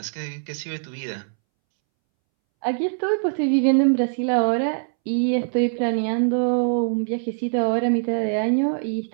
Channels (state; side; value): silent; left; 64 dB below the other